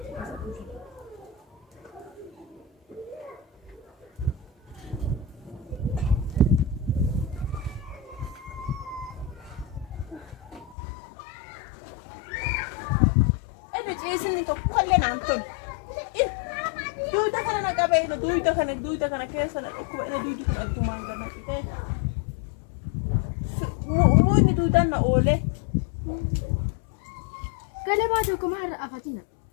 Isini tokko kallee naan tolu. Duyda kana na qabee duyda kana keessa na dhukkuba ina duydi kun addumaan gana qitee. Muunni duydaan na oolee. Galabaa tokko maal afatina?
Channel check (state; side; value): drops out; right; at 10.8 s